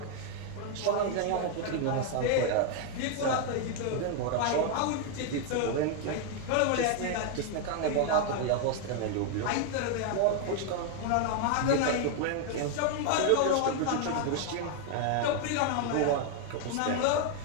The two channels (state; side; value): different; both; correlation 0.00